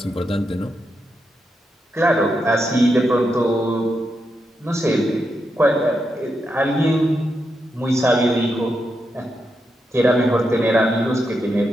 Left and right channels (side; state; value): both; normal; correlation 0.84